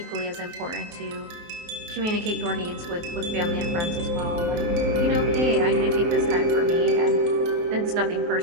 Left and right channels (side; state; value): left; late; 23 ms